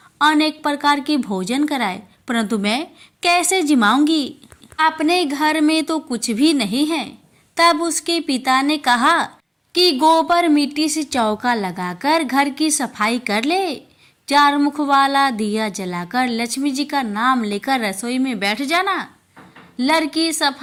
अनेक प्रकार के भोजन कराए, परंतु मैं कैसे जिमाऊंगी? अपने घर में तो कुछ भी नहीं है। तब उसके पिता ने कहा कि गोबर मिट्टी से चौका लगाकर घर की सफाई कर ले, 4 मुख वाला दिया जलाकर लक्ष्मी जी का नाम लेकर रसोई में बैठ जाना। लड़की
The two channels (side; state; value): both; identical; correlation 1.00